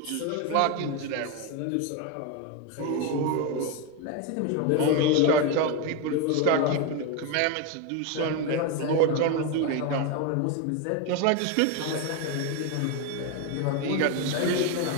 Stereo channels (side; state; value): both; different; correlation 0.02